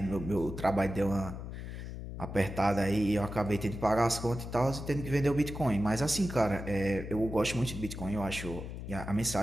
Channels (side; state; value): left; noise; hum, 8 dB below the sound